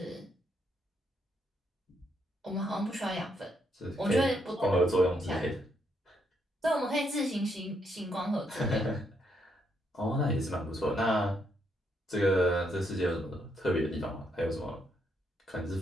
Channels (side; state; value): both; normal; correlation 0.76